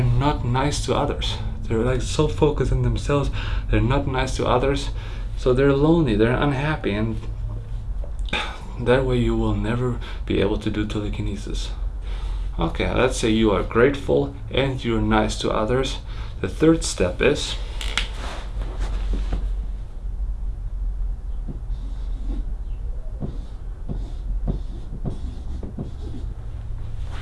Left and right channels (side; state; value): both; identical; correlation 1.00